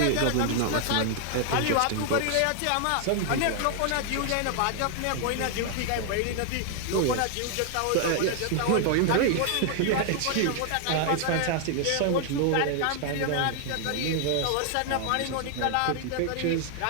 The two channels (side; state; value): both; different; correlation 0.00